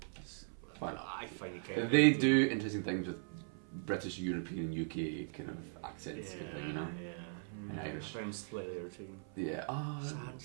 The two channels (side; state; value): left; silent; 52 dB below the other